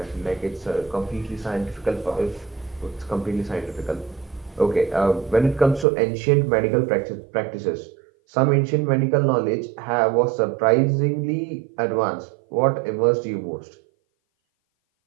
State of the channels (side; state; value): left; drops out; at 5.9 s